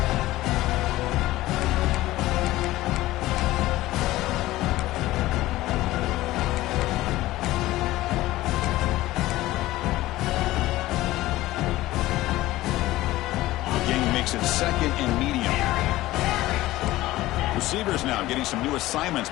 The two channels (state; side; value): quieter; right; 16.9 dB